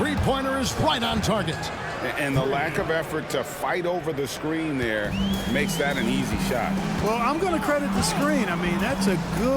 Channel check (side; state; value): both; identical; correlation 1.00